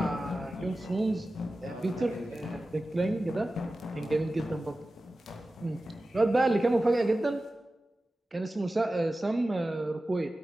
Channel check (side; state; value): both; normal; correlation 0.95